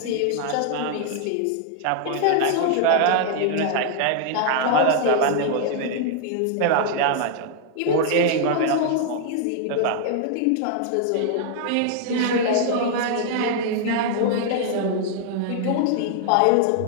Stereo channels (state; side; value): different; both; correlation 0.00